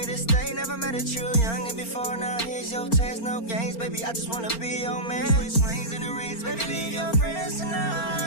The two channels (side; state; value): right; late; 4.4 ms